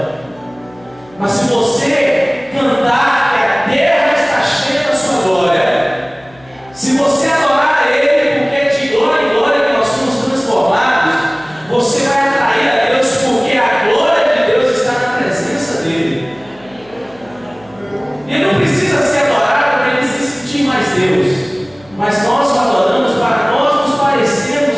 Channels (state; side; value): noise; left; hum, 27 dB below the sound